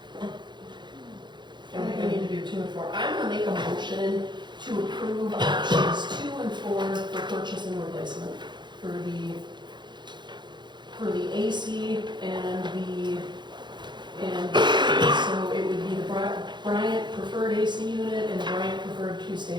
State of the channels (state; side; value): late; left; 0.22 ms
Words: I think we need to do 2 and 4. I'm going to make a motion to approve options 2 and 4 for purchase and replacement for the AC and so it would be the Bryant preferred AC unit and Bryant preferred